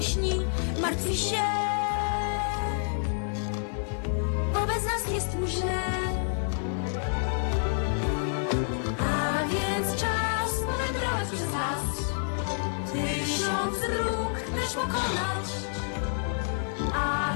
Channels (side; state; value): right; silent; 59 dB below the other